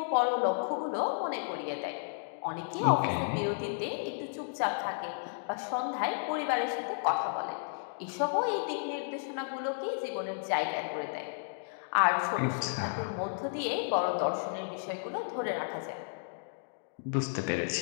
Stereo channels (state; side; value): silent; right; digital silence